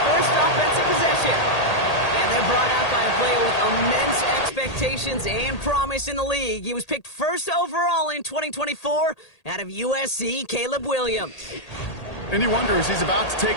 first offensive possession. And they're brought out by a player with immense expectations and promise in the league. He was picked first overall in 2024 out of USC, Caleb Williams. And you wonder, as he's about to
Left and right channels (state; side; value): late; right; 1.8 ms